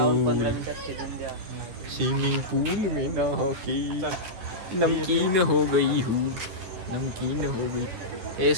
स्विमिंग पूल में नहाके नमकीन हो गई हूँ. नमकीन हो गई.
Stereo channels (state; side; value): late; left; 10 ms